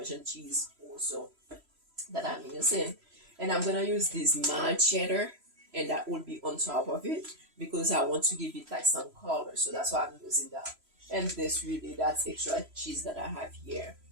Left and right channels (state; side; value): late; left; 3.0 ms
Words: cheese also that I'm using. And I'm gonna use this mild cheddar, and that will be on top of it because I want to give it like some color. So that's why I'm using that. And this really, that's extra cheese that I have here.